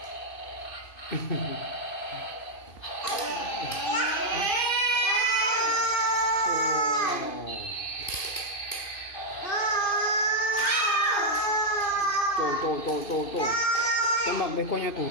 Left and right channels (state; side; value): late; right; 2.5 ms